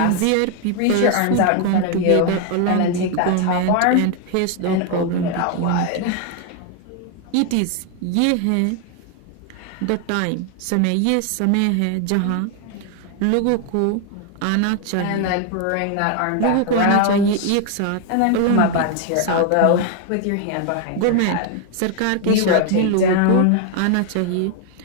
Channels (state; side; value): different; both; correlation 0.01